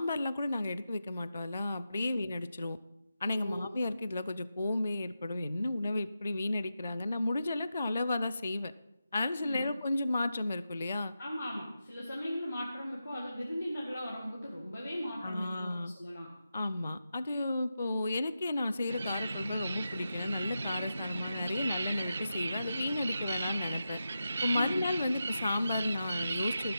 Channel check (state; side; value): inverted; both; correlation -0.89